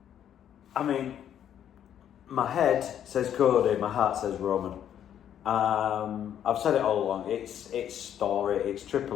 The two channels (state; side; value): quieter; right; 9.9 dB